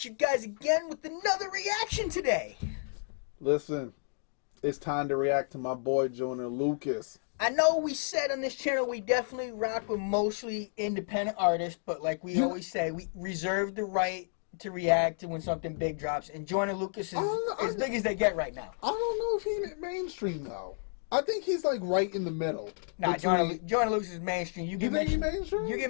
you guys again with another reaction today. Listen, it's time to react to my boy Joyner Lucas. I know we said on this channel we definitely rock with mostly independent artists, but like we always say, we reserve the right to react to when something big drops. And Joyner Lucas is as big as they get right now. I don't know if he's mainstream though. I think he's like right in the middle. Nah, Joyner Lucas is mainstream. You think he's mainstream? You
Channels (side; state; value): right; silent; digital silence